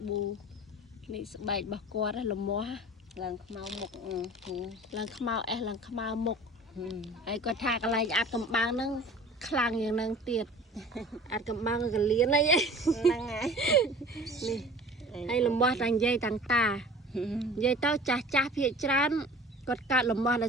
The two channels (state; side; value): normal; both; correlation 0.43